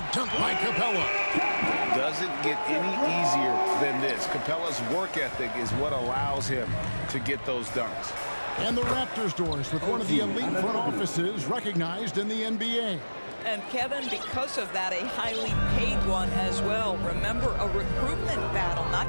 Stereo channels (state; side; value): inverted; both; correlation -1.00